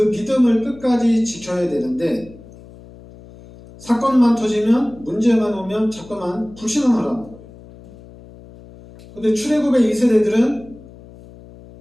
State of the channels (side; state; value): left; noise; hum, 20 dB below the sound